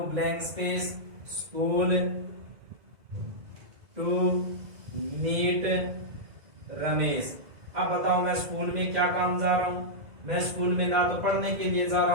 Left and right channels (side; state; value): left; late; 2.0 ms